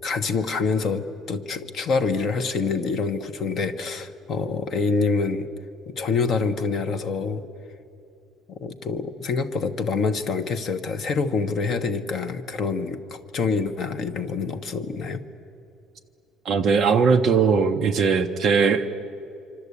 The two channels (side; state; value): both; normal; correlation 0.56